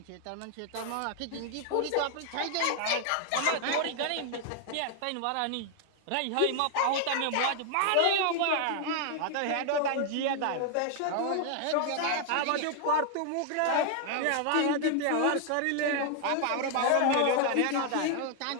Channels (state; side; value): different; both; correlation 0.00